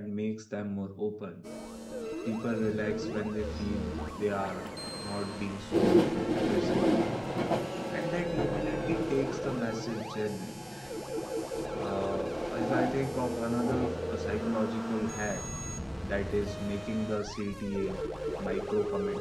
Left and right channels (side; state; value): both; identical; correlation 1.00